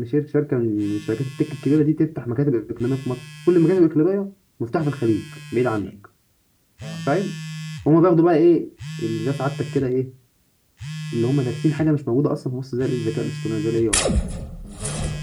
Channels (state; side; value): identical; both; correlation 1.00